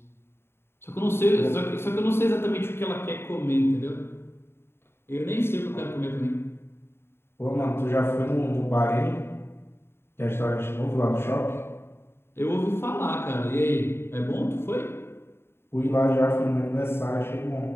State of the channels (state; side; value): late; right; 0.11 ms